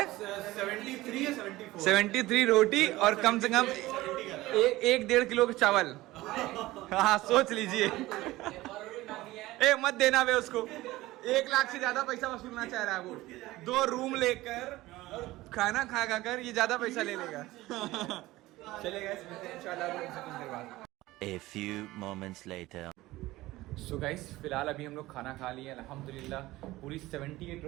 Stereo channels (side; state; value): left; quieter; 18.1 dB